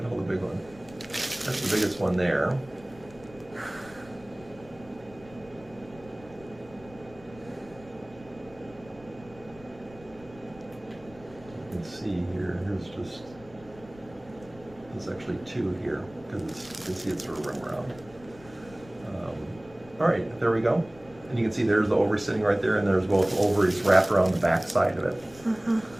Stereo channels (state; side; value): noise; left; rumble, 21 dB below the sound